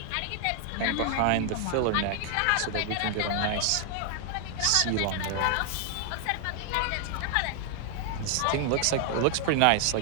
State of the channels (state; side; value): different; both; correlation 0.00